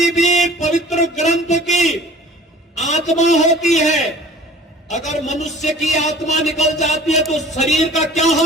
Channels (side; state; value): both; normal; correlation 0.47